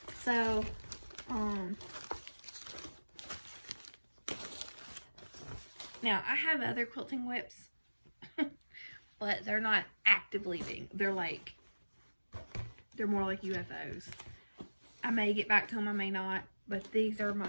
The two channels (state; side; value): inverted; both; correlation -1.00